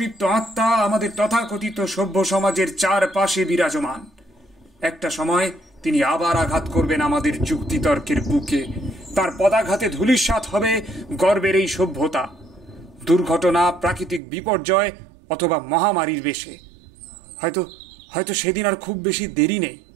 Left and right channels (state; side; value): drops out; left; at 14.2 s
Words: আত্মা আমাদের তথাকথিত সভ্য সমাজের চারপাশে বিরাজমান। একটা সময় তিনি আবার আঘাত করবেন আমাদের যুক্তিতর্কের বুকে। তার পদাঘাতে ধূলিসাৎ হবে গর্বের এই সভ্যতা। দুর্ঘটনা, প্রাকৃতিক বিপর্যয় অথবা মহামারীর বেশে হয়তো সেদিন আর খুব বেশি দেরি নেই।